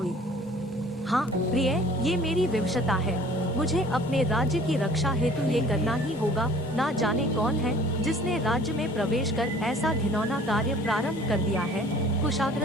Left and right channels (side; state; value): both; normal; correlation 0.51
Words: हाँ प्रिय, ये मेरी विवशता है। मुझे अपने राज्य की रक्षा हेतु ये करना ही होगा। ना जाने कौन है जिसने राज्य में प्रवेश कर ऐसा घिनौना कार्य प्रारंभ कर दिया है,